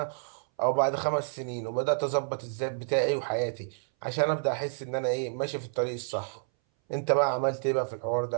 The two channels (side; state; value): left; silent; 58 dB below the other